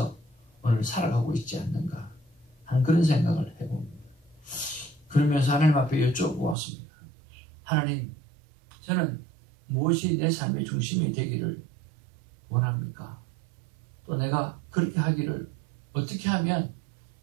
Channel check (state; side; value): drops out; left; at 6.6 s